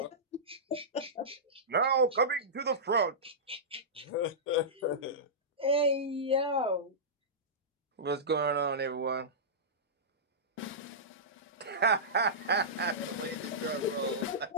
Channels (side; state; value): both; normal; correlation -0.16